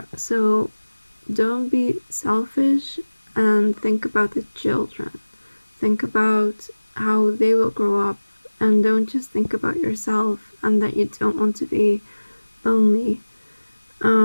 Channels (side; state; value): both; inverted; correlation -1.00